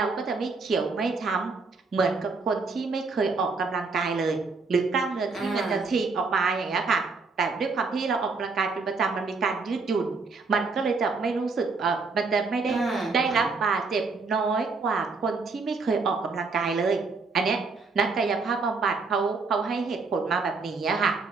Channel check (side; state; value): left; quieter; 4.3 dB